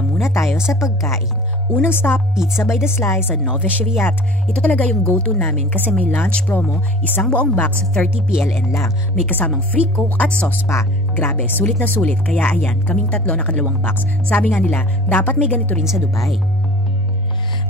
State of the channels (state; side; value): normal; both; correlation 0.43